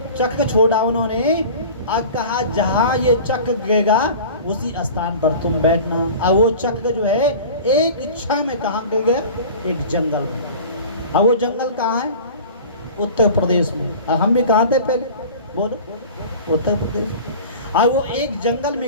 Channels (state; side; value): inverted; both; correlation -0.39